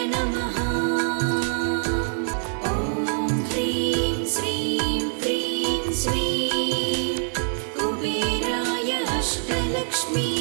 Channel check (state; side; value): silent; left; digital silence